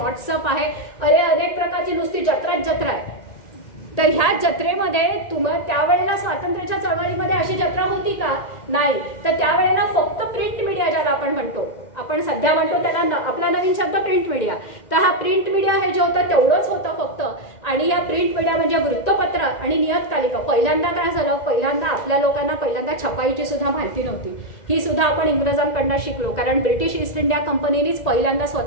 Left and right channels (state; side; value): late; right; 2.0 ms